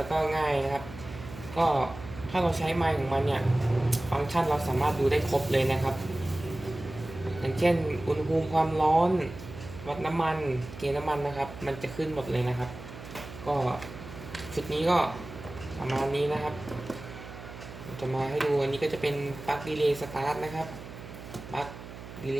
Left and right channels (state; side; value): noise; right; hum, 14 dB below the sound